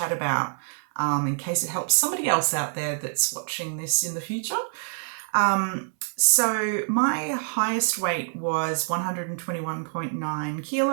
about in case it helps somebody else out there that's watching this in the future. So my highest weight was 121.9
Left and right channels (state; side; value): silent; left; 61 dB below the other